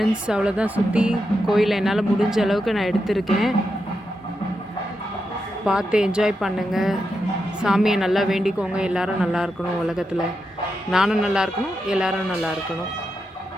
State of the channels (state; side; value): normal; both; correlation 0.86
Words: அவ்வளோதான், சுற்றி கோயிலை என்னால் முடிஞ்ச அளவுக்கு நான் எடுத்திருக்கேன். பார்த்து என்ஜாய் பண்ணுங்கள். சாமியை நல்லா வேண்டிக்கோங்க, எல்லோரும் நல்லா இருக்கணும் உலகத்தில். நானும் நல்லா இருக்கணும், எல்லோரும் நல்லா இருக்கணும்.